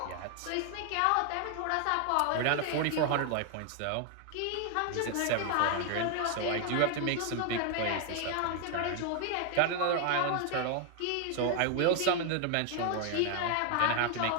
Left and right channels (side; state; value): both; different; correlation 0.00